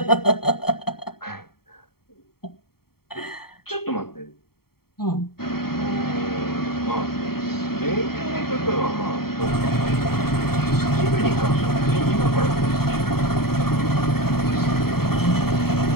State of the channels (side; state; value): right; late; 0.95 ms